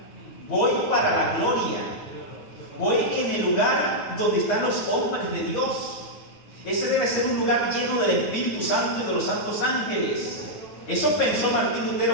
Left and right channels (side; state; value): right; late; 9.1 ms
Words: Voy para la gloria. Voy en el lugar donde están los hombres de Dios. Ese debe ser un lugar lleno del Espíritu Santo y de los santos ángeles. Eso pensó Martín